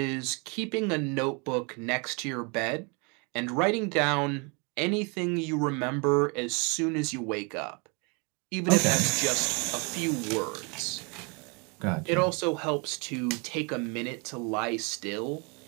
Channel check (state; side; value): quieter; left; 32.6 dB